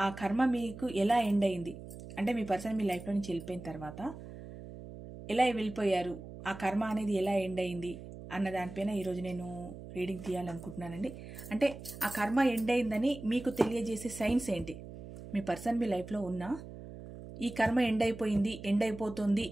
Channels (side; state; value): right; noise; hum, 13 dB below the sound